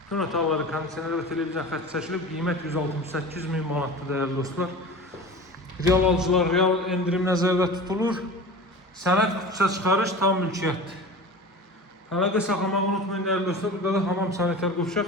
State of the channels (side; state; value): both; normal; correlation 0.34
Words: Bütün otaqları kondisioner və televizyon xətti çəkilib. Qiymət 168 min manatdır, dəyərli dostlar. Real alıcılar, real endirim nəzərdə tutulur. Sənəd qutuça çıxarış tam mülkiyyətdir. Əlaqə saxlamağı unutmayın, dəyərli dostlar. Burada da hamam sanitar